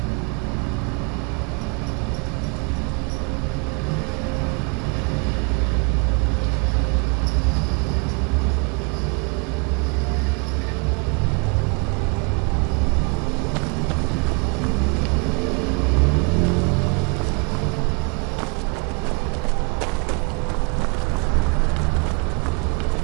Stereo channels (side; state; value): left; quieter; 33.3 dB